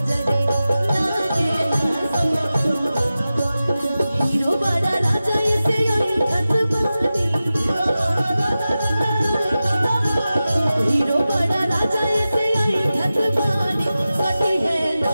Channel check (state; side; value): inverted; both; correlation -0.94